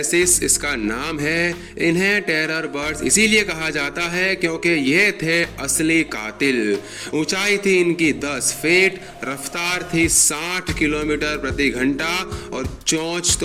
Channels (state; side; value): identical; both; correlation 1.00